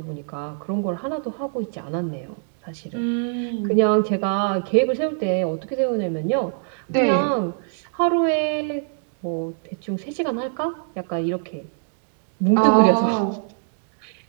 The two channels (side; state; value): left; silent; digital silence